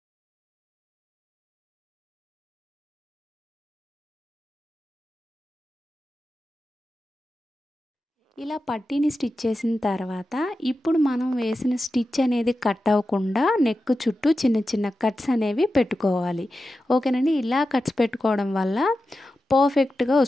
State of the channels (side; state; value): both; normal; correlation 0.92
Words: ఇలా పట్టీని స్టిచ్ చేసిన తర్వాత ఇప్పుడు మనం వేసిన స్టిచ్ అనేది కట్ అవ్వకుండా నెక్ చుట్టూ చిన్న కట్స్ అనేవి పెట్టుకోవాలి. ఓకేనండి? ఇలా కట్స్ పెట్టుకోవడం వల్ల పర్ఫెక్ట్గా